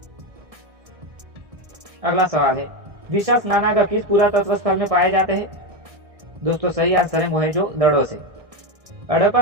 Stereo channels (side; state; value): left; late; 1.6 ms